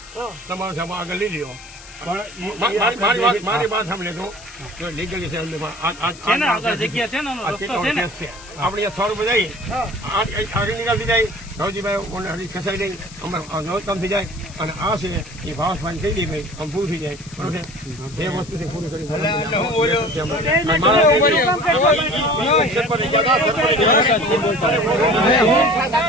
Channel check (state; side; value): noise; left; hiss, 19 dB below the sound